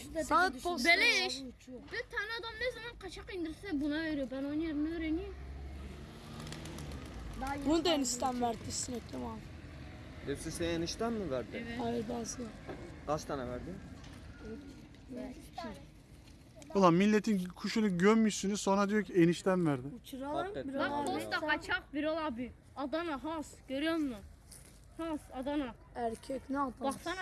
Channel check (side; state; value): both; identical; correlation 1.00